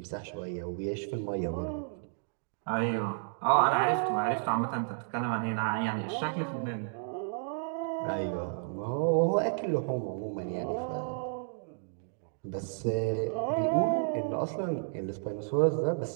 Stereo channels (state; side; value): silent; left; digital silence